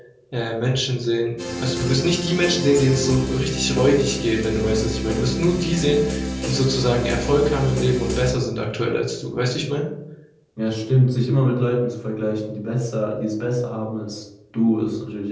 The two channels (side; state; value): both; identical; correlation 1.00